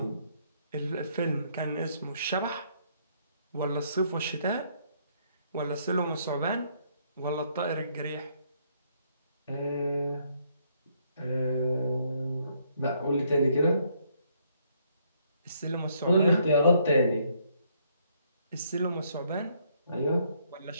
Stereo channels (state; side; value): inverted; both; correlation -0.70